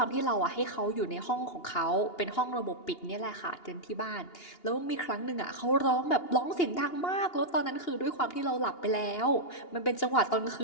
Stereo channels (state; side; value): late; right; 2.8 ms